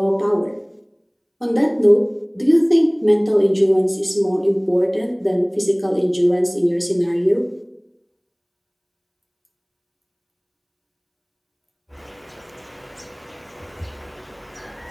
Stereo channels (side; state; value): both; identical; correlation 1.00